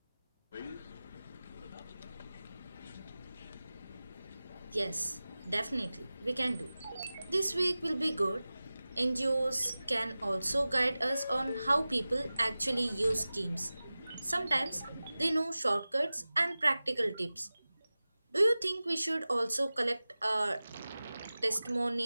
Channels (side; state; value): both; inverted; correlation -0.97